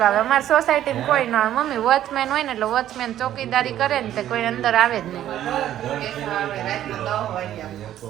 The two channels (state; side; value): quieter; left; 12.0 dB